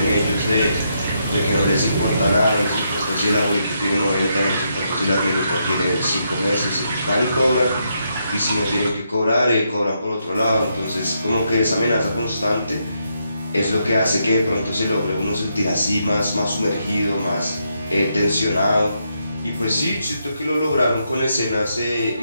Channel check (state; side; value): inverted; both; correlation -0.79